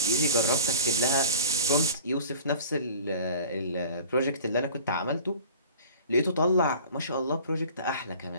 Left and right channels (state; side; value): inverted; both; correlation -0.45